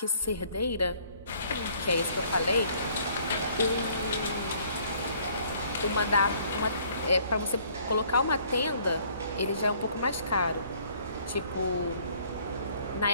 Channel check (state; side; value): inverted; both; correlation -0.60